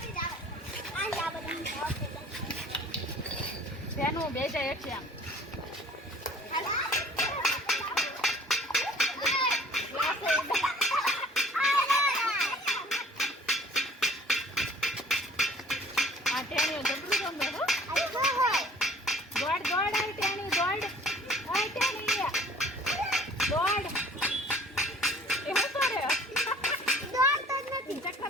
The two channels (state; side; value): normal; both; correlation 0.52